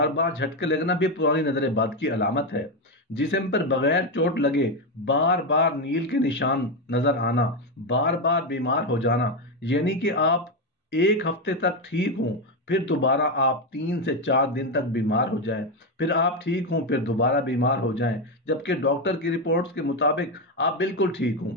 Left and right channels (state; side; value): normal; both; correlation 0.09